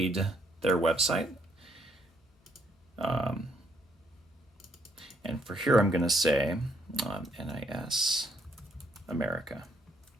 their website. And for here, I'm going to say NIS America.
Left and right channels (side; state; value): both; normal; correlation 0.71